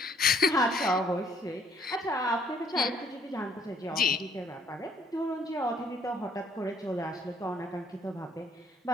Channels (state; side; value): normal; both; correlation 0.64